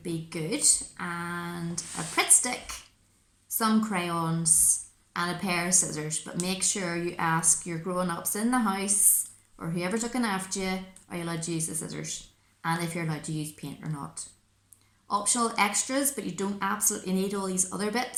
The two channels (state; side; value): identical; both; correlation 1.00